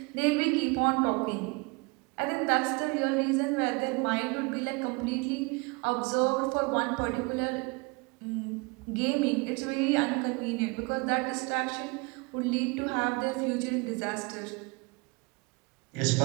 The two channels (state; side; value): quieter; left; 28.7 dB